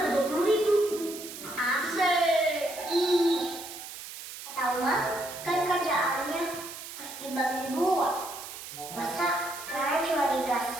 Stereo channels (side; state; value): right; noise; hiss, 11 dB below the sound